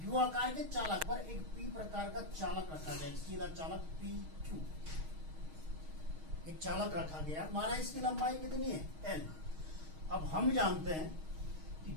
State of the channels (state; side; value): late; left; 6.4 ms